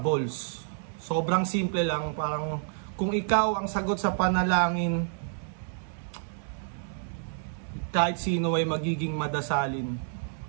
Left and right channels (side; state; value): left; silent; digital silence